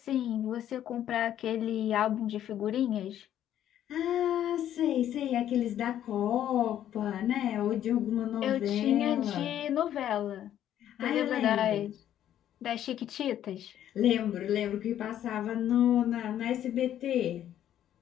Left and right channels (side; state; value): right; quieter; 11.1 dB